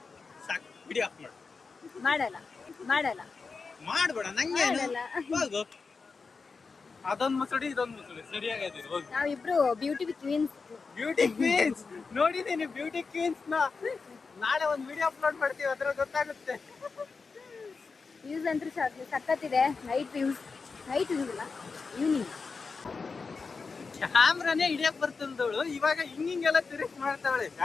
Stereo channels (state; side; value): quieter; right; 4.7 dB